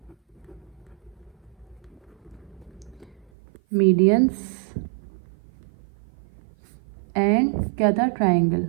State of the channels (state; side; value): drops out; left; at 3.3 s